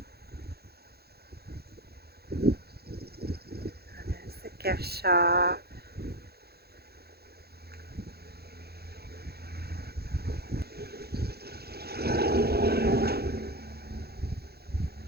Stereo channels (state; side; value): late; left; 0.46 ms